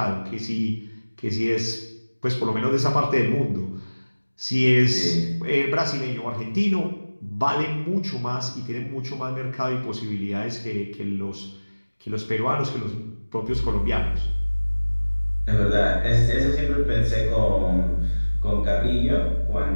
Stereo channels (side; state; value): both; inverted; correlation -1.00